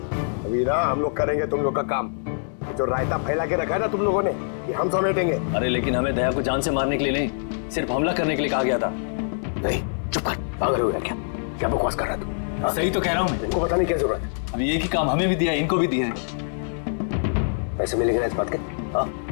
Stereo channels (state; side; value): silent; right; digital silence